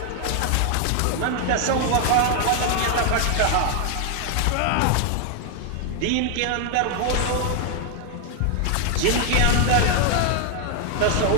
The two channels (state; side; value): different; both; correlation 0.00